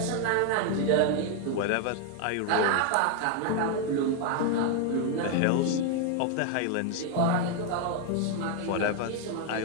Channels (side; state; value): both; different; correlation 0.01